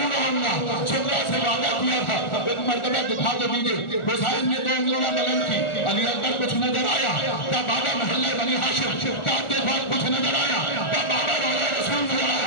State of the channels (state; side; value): late; right; 1.4 ms